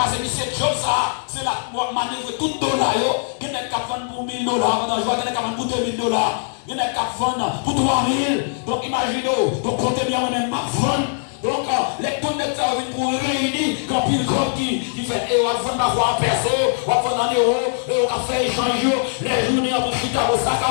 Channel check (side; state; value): right; silent; 65 dB below the other